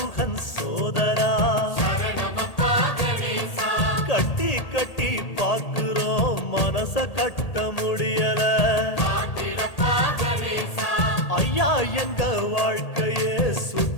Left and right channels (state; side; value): late; right; 1.8 ms